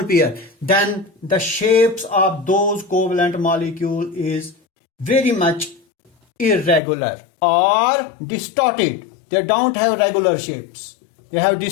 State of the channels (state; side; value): drops out; right; at 6.8 s